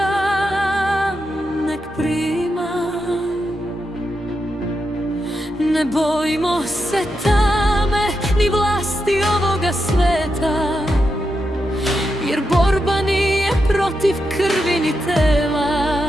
nek prima. Ne bojimo se tame ni vlasti ovoga sveta, jer borba nije protiv krvi ni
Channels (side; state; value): both; normal; correlation 0.86